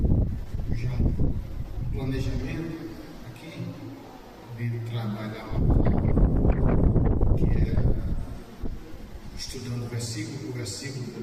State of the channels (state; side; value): identical; both; correlation 1.00